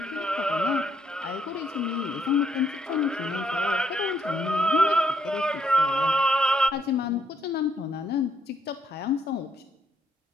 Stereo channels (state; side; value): normal; both; correlation 0.72